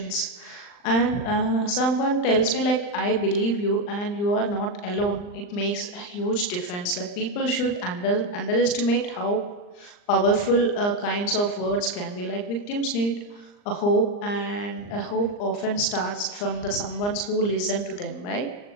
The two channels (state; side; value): late; right; 39 ms